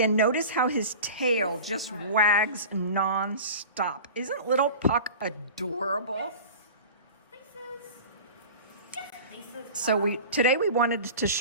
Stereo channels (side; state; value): both; inverted; correlation -0.36